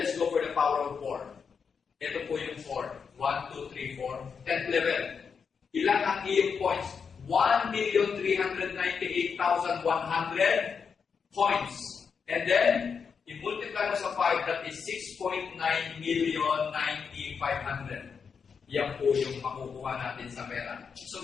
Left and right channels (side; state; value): right; quieter; 6.1 dB